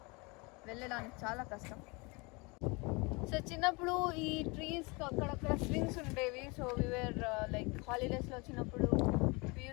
వెళ్ళడానికి చాలా కష్టం. సో చిన్నప్పుడు ఈ ట్రీస్ అక్కడక్కడ స్వింగ్స్ ఉండేవి. సో వీఆర్ లైక్ హాలిడేస్లో వచ్చినప్పుడు we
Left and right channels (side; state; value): right; quieter; 27.9 dB